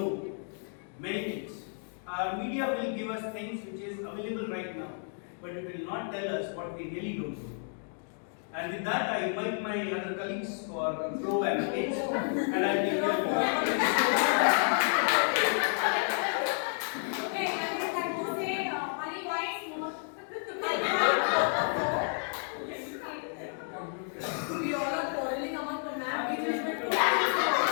many things. Our media will give us things which is available right now, but it will not tell us what we really don't know. And with that, I invite my other colleagues for pro and against, and I give them Okay, I would like to say only points more. We all are quarreling among the map.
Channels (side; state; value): right; silent; 55 dB below the other